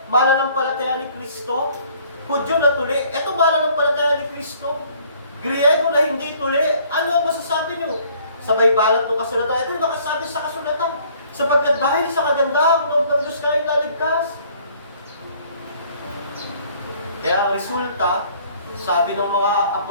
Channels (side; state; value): both; inverted; correlation -0.58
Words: mananampalataya ni Kristo. Hudyo na tuli, ito mananampalataya ni Kristo. Griego na hindi tuli, ano ang masasabi niyo? Sabay balat ng kasulatan, ito yung nakasabi sa kasulatan. Sapagkat dahil sa kagandahang loob ng Diyos kayo naligtas. Kaya ang resulta, sabi ng mga